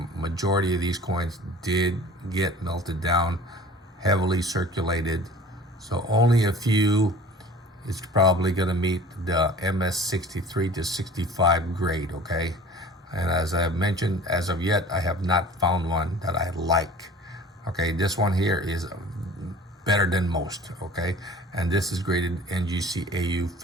majority of these coins did get melted down, heavily circulated. So only a few is probably going to meet the MS 63 to 65 grade, okay? And as I have mentioned, as of yet, I have not found one that I like. Okay, this one here is better than most, okay? And this is graded NGC AU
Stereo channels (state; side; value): normal; both; correlation 0.45